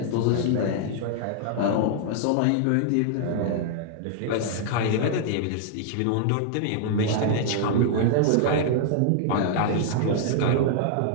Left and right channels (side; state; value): both; different; correlation -0.01